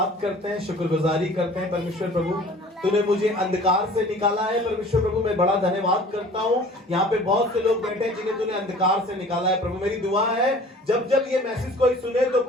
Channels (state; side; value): normal; both; correlation 0.47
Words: करते हैं, शुक्रगुजारी करते हैं परमेश्वर प्रभु, तूने मुझे अंधकार से निकाला है। परमेश्वर प्रभु मैं बड़ा धन्यवाद करता हूँ। यहाँ पे बहुत से लोग बैठे हैं जिन्हें तूने अंधकार से निकाला है। प्रभु मेरी दुआ है जब जब ये मैसेज कोई सुने तो